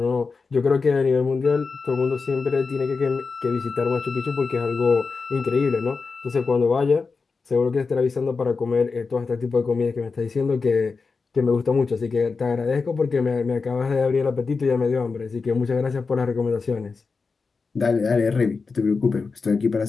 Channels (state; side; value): quieter; right; 4.6 dB